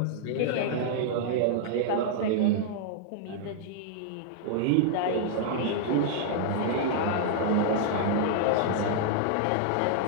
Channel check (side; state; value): both; different; correlation -0.01